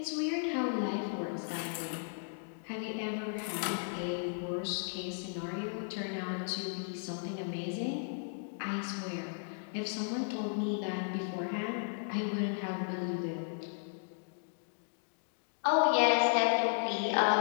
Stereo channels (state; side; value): silent; right; digital silence